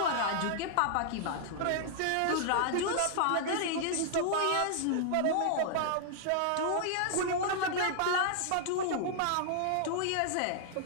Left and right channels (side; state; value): both; different; correlation -0.01